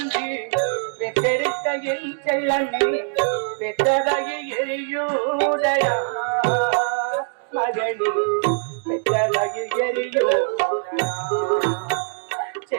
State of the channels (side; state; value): left; silent; digital silence